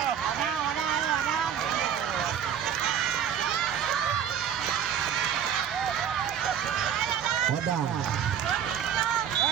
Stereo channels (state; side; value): quieter; left; 8.6 dB